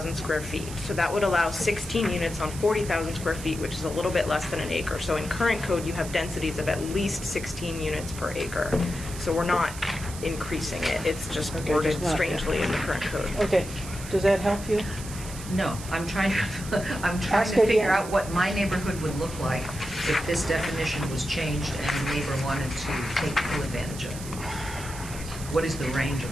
square feet. So that would allow 16 units on 40,000 square feet, which is a little bit less than an acre. So in current code, you have densities of at least 16 units per acre. So we're not increasing it. It's just Okay, worded just not- strangely in the current code. Okay, does that help you? No, I'm trying Ask to again. figure out what my neighborhood would look like if this definition was changed and a neighbor wanted to take full advantage of it. What is the range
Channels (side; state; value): right; noise; hiss, 13 dB below the sound